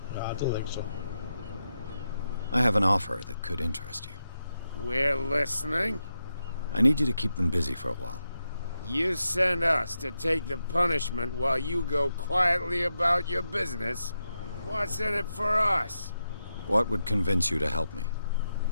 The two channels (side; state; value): both; inverted; correlation -0.86